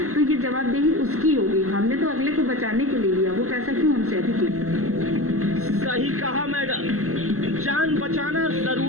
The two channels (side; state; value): left; late; 0.64 ms